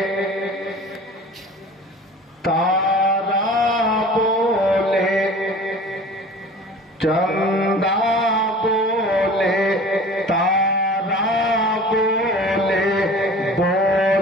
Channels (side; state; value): both; normal; correlation 0.42